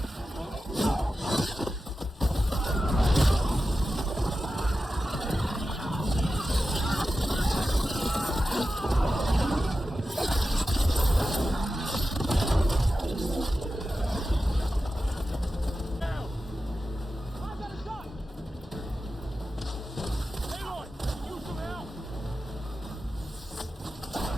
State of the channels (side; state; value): both; normal; correlation 0.92